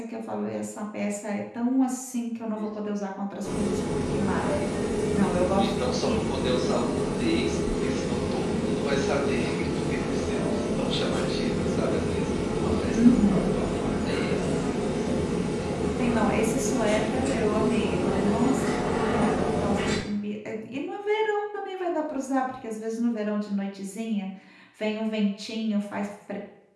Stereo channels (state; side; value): identical; both; correlation 1.00